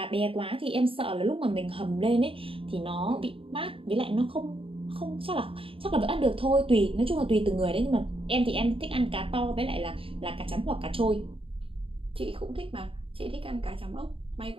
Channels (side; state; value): left; late; 0.26 ms